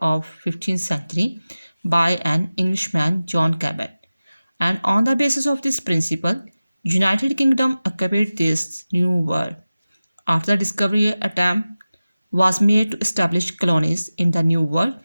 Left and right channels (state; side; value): inverted; both; correlation -0.96